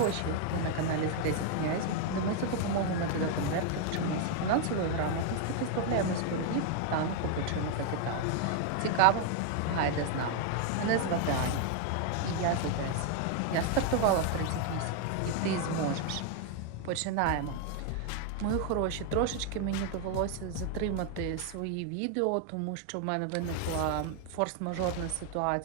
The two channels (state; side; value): different; both; correlation 0.00